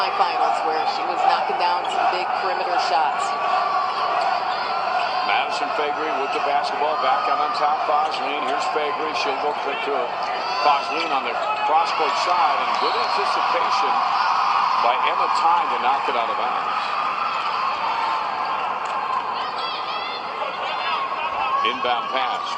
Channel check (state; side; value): identical; both; correlation 1.00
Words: where she was knocking down some big perimeter shots. Madison Faegre with the basketball, back out on top. Fosleen, here's Faegre. She'll go quick to her. Fosleen on the cross-court side, and good anticipation by Emma Tyne to knock it out of bounds. Inbound pass